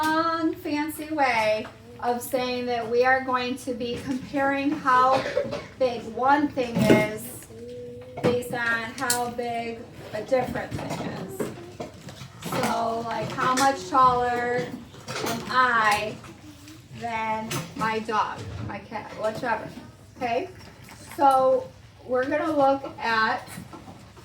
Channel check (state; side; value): identical; both; correlation 1.00